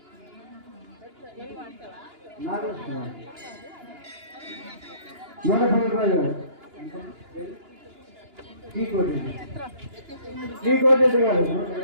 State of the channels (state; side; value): late; left; 2.9 ms